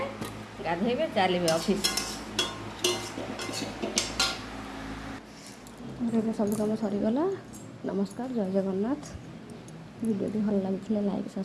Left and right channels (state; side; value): identical; both; correlation 1.00